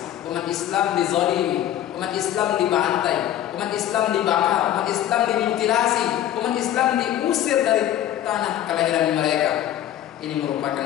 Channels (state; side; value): quieter; right; 11.8 dB